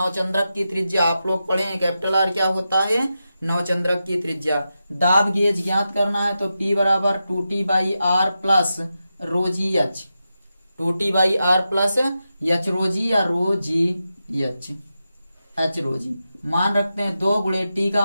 की त्रिज्या, आप लोग पढ़े हैं कैपिटल आर क्या होता है, नवचंद्रक की त्रिज्या। दाब गेज ज्ञात करना है तो P बराबर 2T/R plus rho g h, 2T/R plus h rho g या rho g H, H rho जी। मान रखते हैं 2 गुणे T का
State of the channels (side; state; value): both; inverted; correlation -0.90